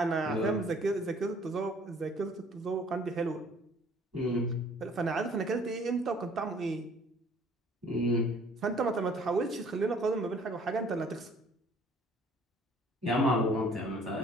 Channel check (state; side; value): normal; both; correlation 0.56